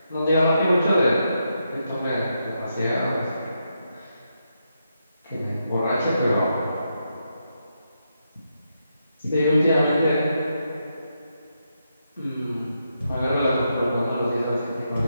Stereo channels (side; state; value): both; inverted; correlation -0.83